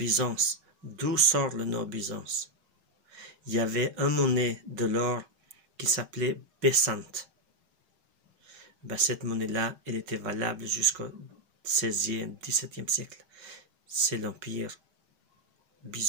d'où sort le nom Byzance? Il y avait un monnaie de l'or qui s'appelait Bessante. Cette monnaie-là, elle était valable jusqu'au 16e, 17e siècle. C'est l'empire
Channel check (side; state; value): left; late; 6.3 ms